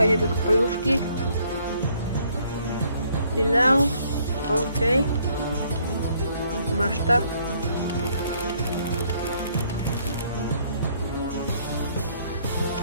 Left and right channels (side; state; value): both; inverted; correlation -0.65